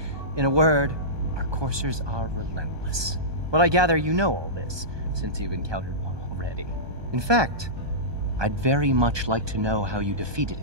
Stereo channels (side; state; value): left; late; 1.2 ms